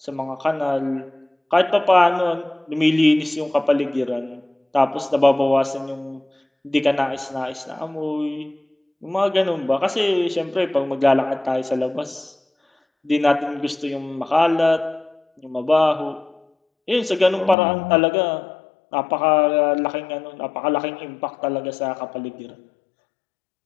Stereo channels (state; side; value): drops out; right; at 17.6 s